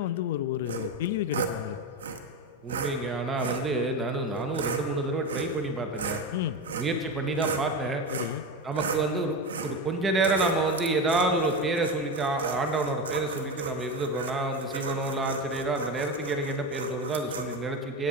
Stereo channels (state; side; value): normal; both; correlation 0.19